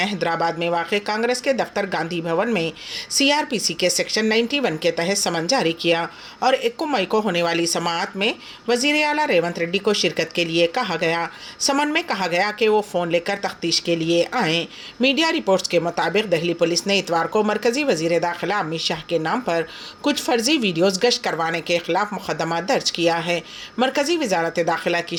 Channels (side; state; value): both; identical; correlation 1.00